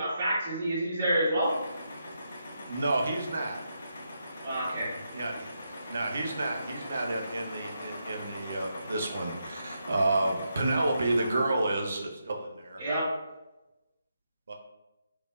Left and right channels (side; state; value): both; inverted; correlation -0.82